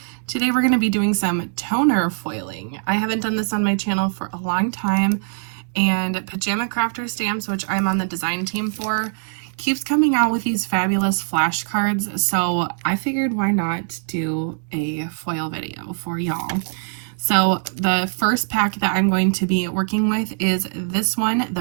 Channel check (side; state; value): left; silent; digital silence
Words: Today we're going to be doing some toner foiling. I haven't done this on my channel for a long time, and Pajama Crafter Stamps, which I'm on the design team for, keeps coming out with these fabulous flashcards, so I figured why not do a foil video for y'all. So the first pack that I'm going to be working with is this one,